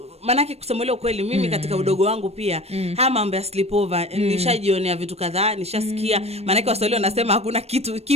manake kusema leo kweli mimi katika udogo wangu pia haya mambo ya sleepover nishajionea vitu kadhaa, nishasikia. Manake Waswahili wanasema hakuna kitu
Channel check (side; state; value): left; late; 0.30 ms